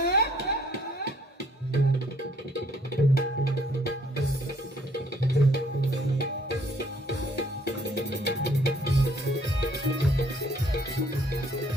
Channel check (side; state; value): both; normal; correlation 0.63